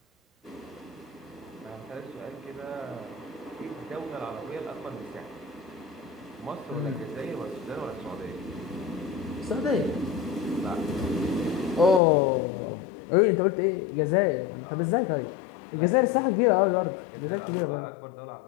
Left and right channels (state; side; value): drops out; right; at 12.0 s